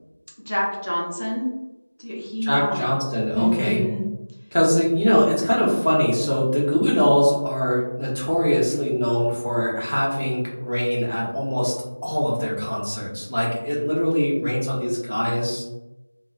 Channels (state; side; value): inverted; both; correlation -1.00